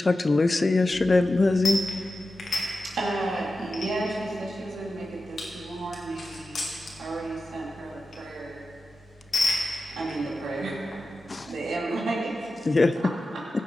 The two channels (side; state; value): both; normal; correlation 0.93